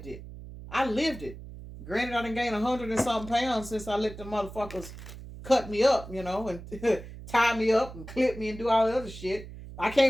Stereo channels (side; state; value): right; noise; hum, 14 dB below the sound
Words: it. I lived it. Granted, I done gained 100 and something pounds since I let the motherfuckers cut me up, you know, and tie me up and clip me and do all the other shit. I